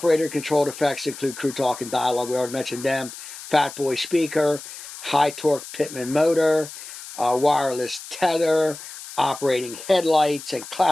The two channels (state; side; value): noise; left; hiss, 13 dB below the sound